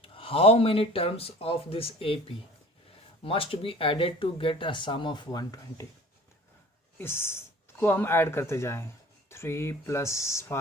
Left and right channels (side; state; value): both; normal; correlation 0.46